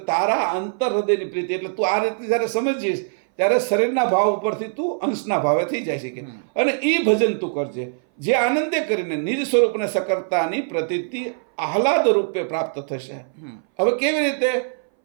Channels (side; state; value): left; silent; 60 dB below the other